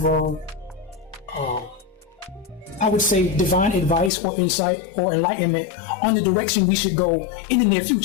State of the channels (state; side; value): drops out; right; at 4.1 s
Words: I would say, divine advice or insight or enlightenment on the direction we should go in the near